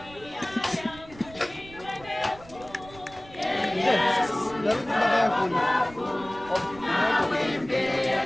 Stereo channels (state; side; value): noise; right; rumble, 20 dB below the sound